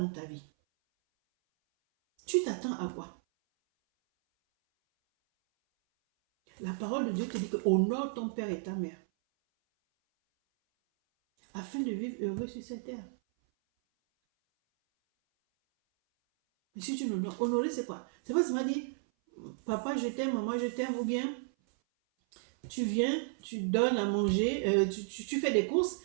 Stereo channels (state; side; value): silent; left; 56 dB below the other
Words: ta vie? Tu t'attends à quoi? La parole de Dieu te dit que honore ton père et ta mère, afin de vivre heureux sur cette terre. Mais si tu n'honores, honorer c'est quoi? C'est pas seulement dire, papa je t'aime, maman je t'aime, ou bien tu viens, tu donnes à manger, tu fais des courses,